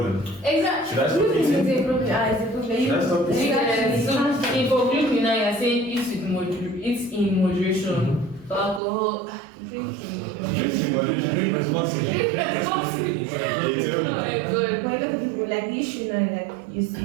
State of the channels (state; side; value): drops out; left; at 8.8 s